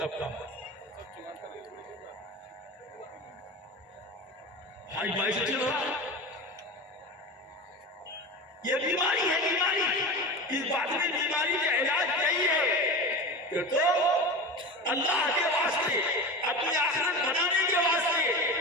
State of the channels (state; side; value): normal; both; correlation 0.28